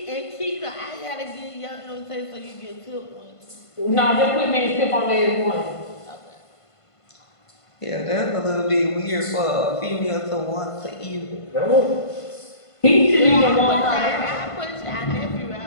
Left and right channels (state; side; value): late; right; 1.5 ms